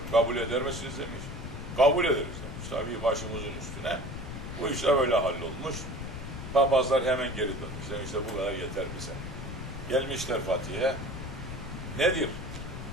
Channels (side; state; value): left; noise; rumble, 7 dB below the sound